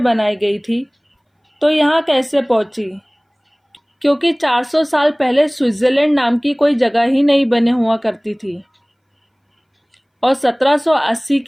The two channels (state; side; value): identical; both; correlation 1.00